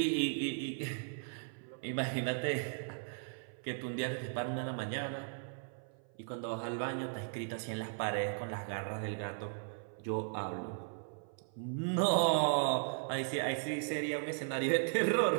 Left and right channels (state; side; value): silent; left; 53 dB below the other